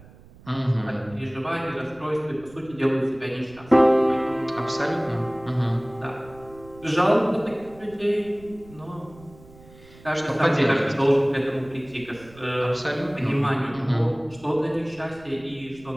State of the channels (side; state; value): right; noise; rumble, 22 dB below the sound